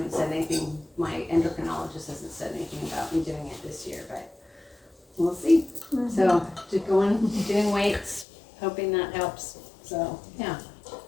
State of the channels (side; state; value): right; drops out; at 8.2 s